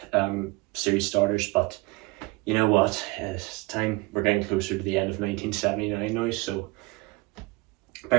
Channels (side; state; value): left; quieter; 23.9 dB